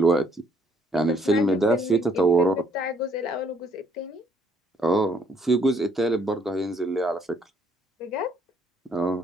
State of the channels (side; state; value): both; normal; correlation 0.67